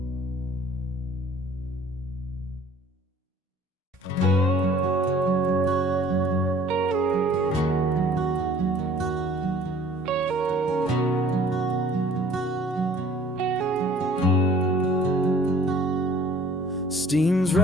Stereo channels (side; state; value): both; normal; correlation 0.52